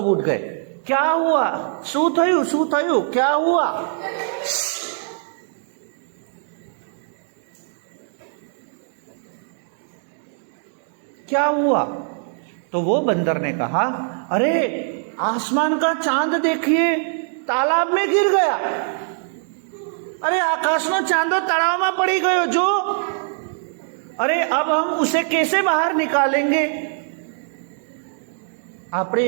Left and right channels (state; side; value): silent; left; 63 dB below the other